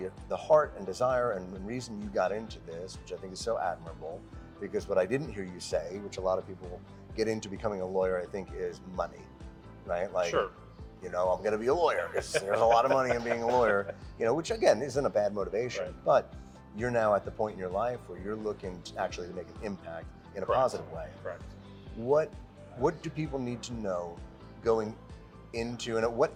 heart and desire and reason you got into this, which I think is so admirable, because what I didn't hear you say, which a lot of people get into becoming a lawyer, I think, is money, right? Like, I'm going to be a lawyer because there's a lot of money in being a lawyer, which again isn't a bad motivation, but you're now at the point in your life where you're looking to actually make an impact in a positive way. Right. What do people need to know going into, and at what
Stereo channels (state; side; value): identical; both; correlation 1.00